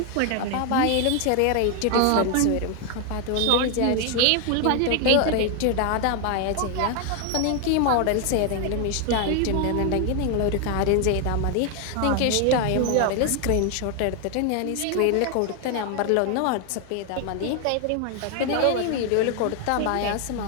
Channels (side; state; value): both; different; correlation 0.00